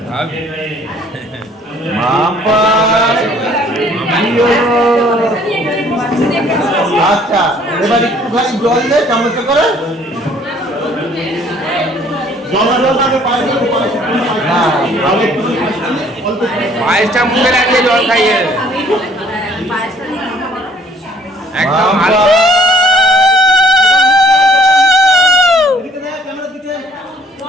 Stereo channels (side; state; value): both; normal; correlation 0.59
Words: আচ্ছা এবার একটুখানি জল দে, চামচ করে পায়েসটা মুখে লাগিয়ে জল খাইয়ে একদম